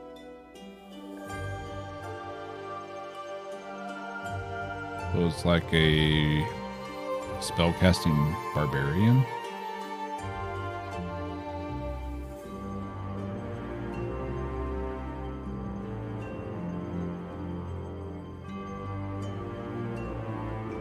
So it's like a spellcasting barbarian.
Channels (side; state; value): both; identical; correlation 1.00